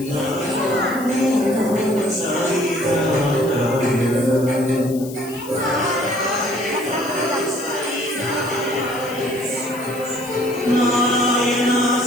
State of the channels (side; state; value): left; noise; hiss, 16 dB below the sound